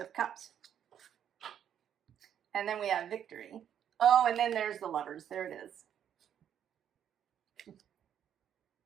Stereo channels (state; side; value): quieter; left; 9.3 dB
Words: Cups. And then we have victory. Oh, and then there's the Lovers. There it is.